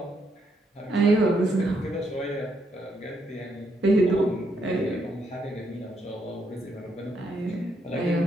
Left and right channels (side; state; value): both; normal; correlation 0.76